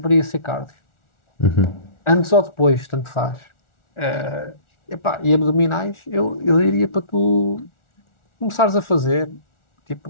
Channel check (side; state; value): right; late; 1.4 ms